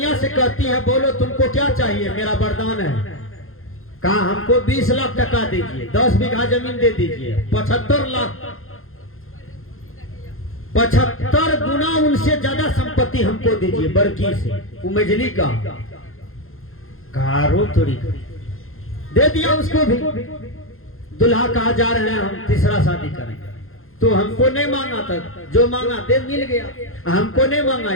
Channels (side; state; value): right; late; 0.61 ms